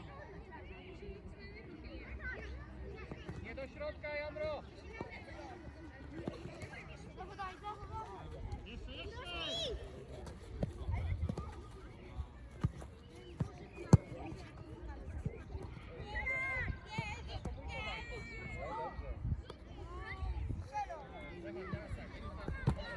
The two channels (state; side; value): identical; both; correlation 1.00